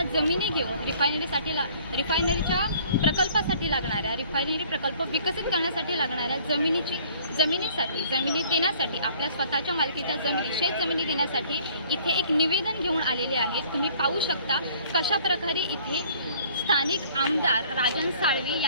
जमिनी घेऊन रिफायनरीच्या प्रकल्पासाठी लागणाऱ्या, रिफायनरी प्रकल्प विकसित करण्यासाठी लागणाऱ्या जमिनी देण्यासाठी, आपल्या स्वतःच्या मालकीच्या शेतजमिनी देण्यासाठी इथे एक निवेदन घेऊन आलेले आहेत। तुम्ही पाहू शकता कशा प्रकारे इथे स्थानिक आमदार राजन साळवी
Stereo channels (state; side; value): inverted; both; correlation -0.55